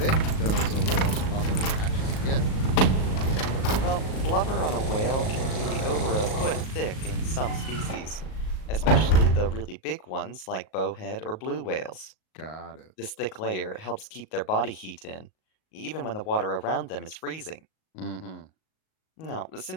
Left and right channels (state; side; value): late; right; 38 ms